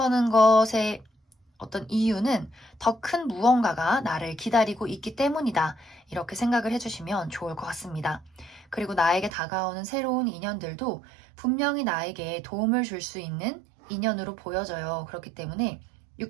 것에 어떤 이유는 더 큰 무언가가 나를 기다리고 있기 때문이다. 이렇게 생각을 해주시면 좋을 것 같습니다. 그리고 나에게 다가오는 새로운 인연들도 분명히 나에게 도움을 줄 수 있는 인연으로 보여져요. 그렇기 때문에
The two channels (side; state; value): left; drops out; at 9.3 s